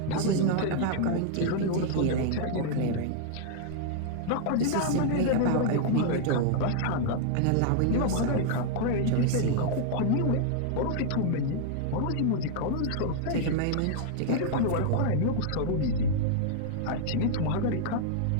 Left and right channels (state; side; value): different; both; correlation -0.01